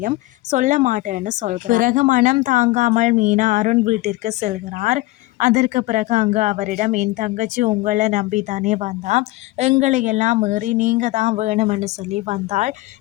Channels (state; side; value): quieter; right; 19.3 dB